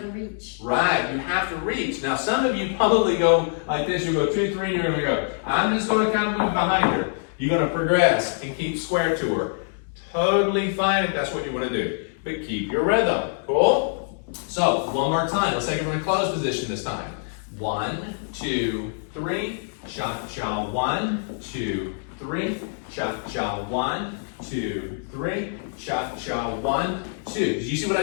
reach. Right, you have to reach. Now some of you probably go like this. You go 2, 3, and you're going to go. I'm just going to kind of move behind her. You're going to progress and keep square to her. Totally fine if that's what you want to do. But keep your rhythm. Cool? So, one more time. Let's take it from a closed position this time. 1, 2, 3. Cha-cha, 1, 2, 3. Cha-cha, 1, 2, 3. Cha-cha, 1, 2. Did you see what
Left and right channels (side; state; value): right; silent; digital silence